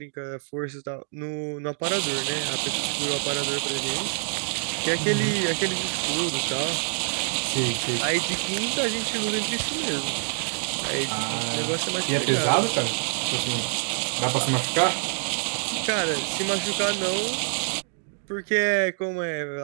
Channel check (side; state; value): left; silent; digital silence